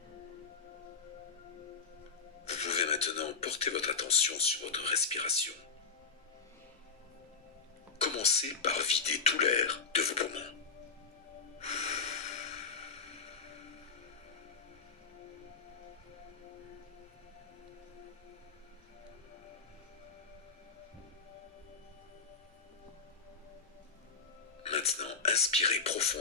Vous pouvez maintenant porter votre attention sur votre respiration. Commencez par vider tout l'air de vos poumons. Maintenant, inspirez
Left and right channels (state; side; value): quieter; right; 4.9 dB